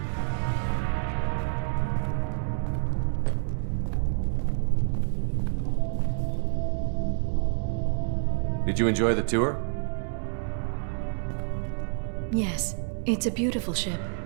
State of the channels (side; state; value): left; silent; 59 dB below the other